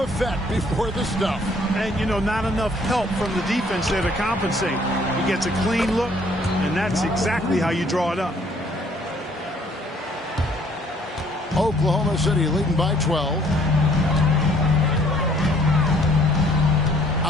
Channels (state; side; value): normal; both; correlation 0.61